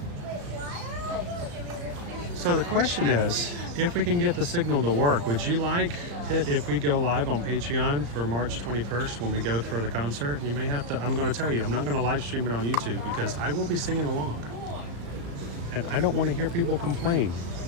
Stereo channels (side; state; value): left; late; 35 ms